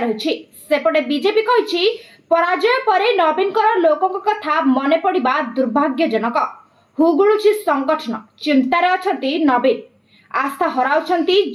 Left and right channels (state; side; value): identical; both; correlation 1.00